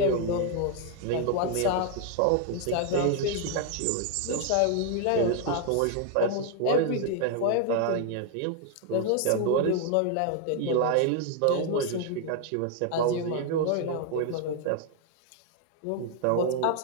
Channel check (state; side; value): different; both; correlation 0.00